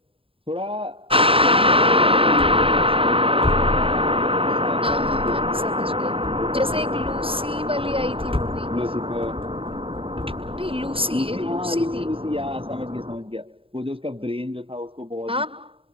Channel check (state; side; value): late; left; 0.27 ms